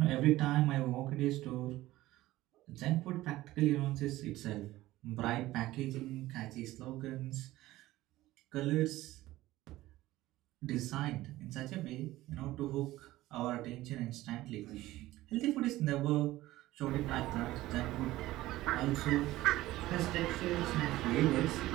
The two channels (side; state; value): left; quieter; 16.7 dB